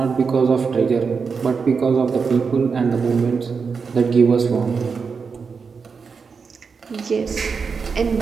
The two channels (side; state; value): left; quieter; 5.4 dB